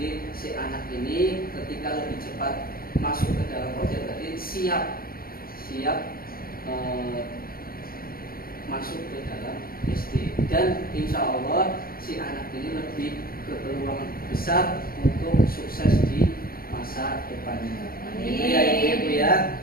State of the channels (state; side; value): late; right; 0.43 ms